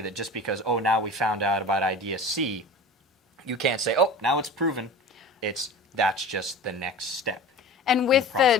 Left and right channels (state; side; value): normal; both; correlation 0.37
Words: that just because, oh, now we found out about idea C, you can't say, oh, now it's proven. That's just the next step. And with the